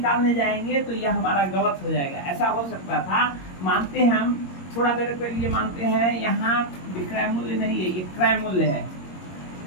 जाएंगे तो यह हमारा गलत हो जाएगा। ऐसा हो सकता था, मानते हैं हम, थोड़ा देर के लिए मानते हैं, यहाँ विक्रय मूल्य नहीं है, ये क्रय मूल्य है।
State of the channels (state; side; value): late; right; 22 ms